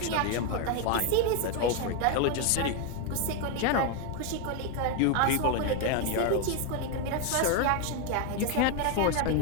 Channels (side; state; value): both; different; correlation 0.01